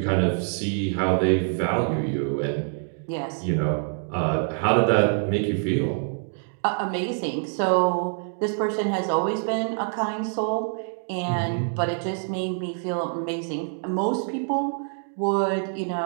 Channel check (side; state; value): left; silent; 60 dB below the other